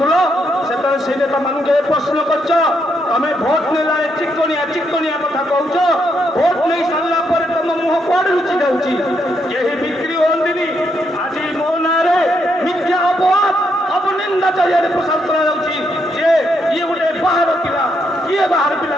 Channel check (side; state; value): both; normal; correlation 0.77